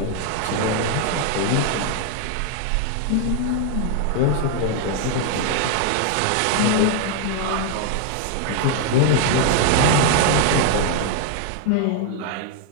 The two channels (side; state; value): both; different; correlation 0.00